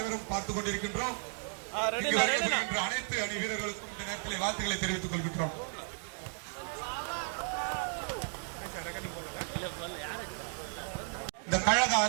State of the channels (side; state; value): left; silent; 55 dB below the other